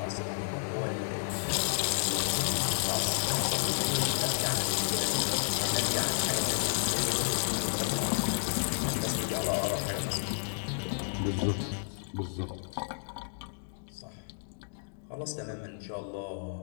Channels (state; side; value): silent; right; digital silence